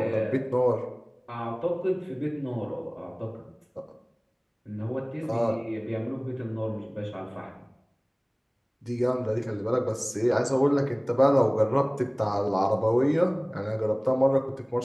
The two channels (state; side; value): identical; both; correlation 1.00